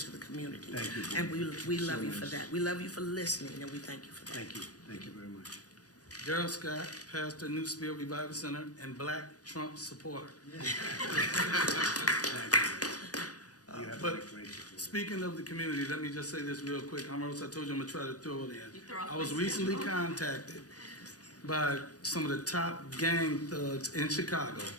the community. Thank you. And we love So you for nice. that. We love you for listening, and we thank you for that. Thank you. Thank you very much. Gerald Scott, pastor, New Spirit Revival Center, and Black Trump supporter. You have But a great support. speaking of the community, let me just say this real quick. I told you I'm gonna try to throw it in. I was recently contacted by some of the top gang thugs in Chicago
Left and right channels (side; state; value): right; late; 0.68 ms